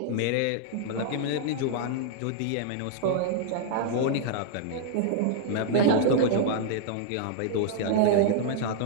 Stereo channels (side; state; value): both; different; correlation -0.01